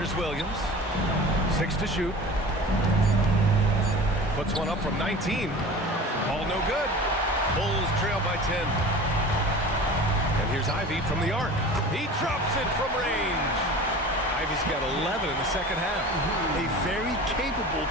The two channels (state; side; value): normal; both; correlation 0.38